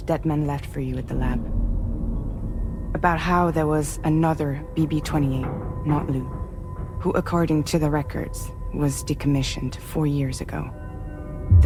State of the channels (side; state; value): both; identical; correlation 1.00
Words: Deadman left for you at the lab. About how there was another BB-28, not Lou, who, according to the records, was decommissioned 4 years ago.